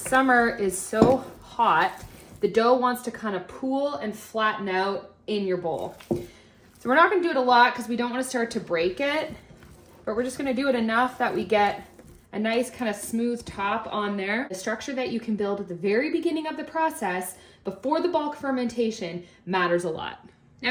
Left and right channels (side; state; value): both; identical; correlation 1.00